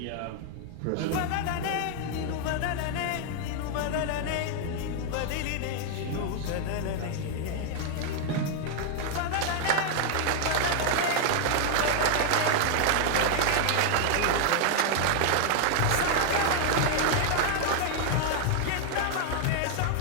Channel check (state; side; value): different; both; correlation 0.00